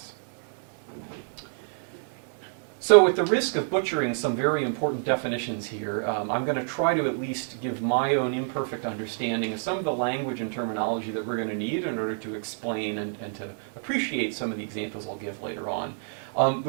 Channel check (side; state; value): left; silent; digital silence